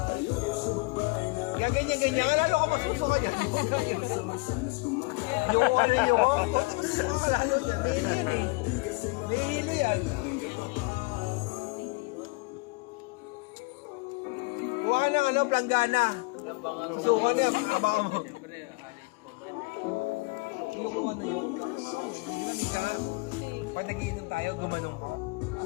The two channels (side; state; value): right; quieter; 26.6 dB